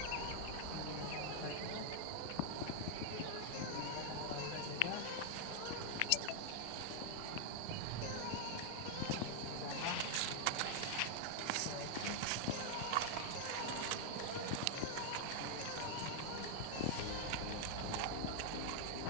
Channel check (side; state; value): both; different; correlation 0.00